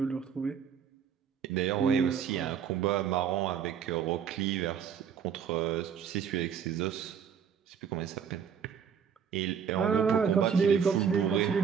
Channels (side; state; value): left; quieter; 7.6 dB